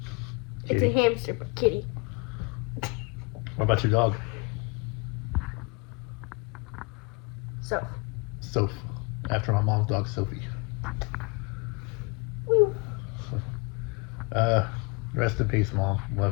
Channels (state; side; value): quieter; right; 28.1 dB